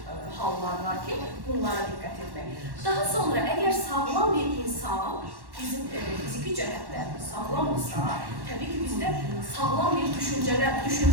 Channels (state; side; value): late; left; 1.1 ms